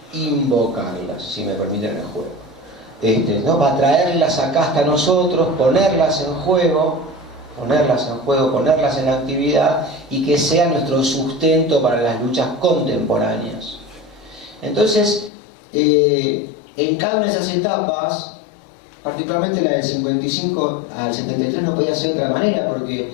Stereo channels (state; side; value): drops out; right; at 15.3 s